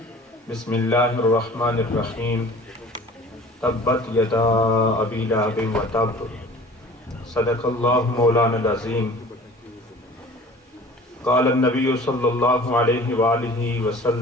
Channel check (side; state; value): both; normal; correlation 0.45